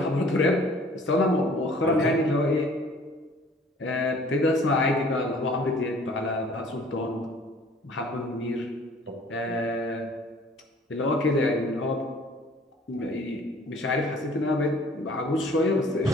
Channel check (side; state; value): both; normal; correlation 0.53